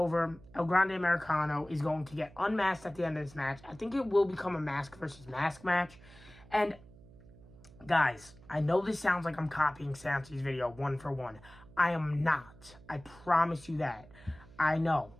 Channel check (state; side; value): noise; right; hum, 22 dB below the sound